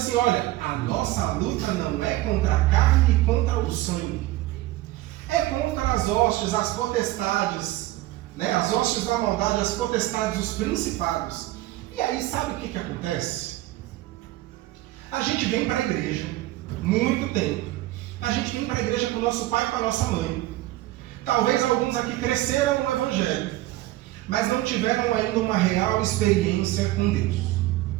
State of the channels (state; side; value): quieter; left; 16.8 dB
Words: olha, a nossa luta não é contra a carne e contra o sangue. É contra as hostes, as potestades, né? As hostes da maldade, as potestades, os principados. E aí, sabe o que acontece? A gente vem para a igreja, muito tempo. A gente vem para a igreja com o nosso pai e com a nossa mãe. Talvez alguns aqui cresceram no Evangelho, mas não tiveram ainda uma real experiência com Deus.